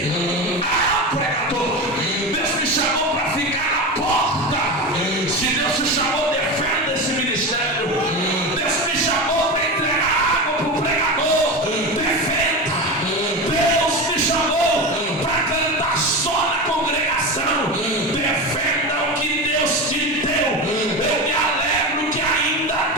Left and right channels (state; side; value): normal; both; correlation 0.22